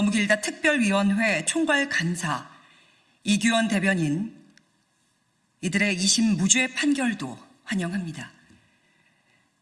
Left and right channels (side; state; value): both; identical; correlation 1.00